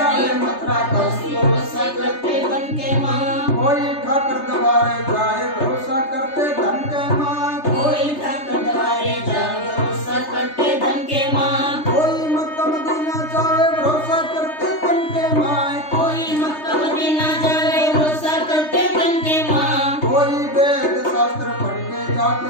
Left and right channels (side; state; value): right; late; 3.3 ms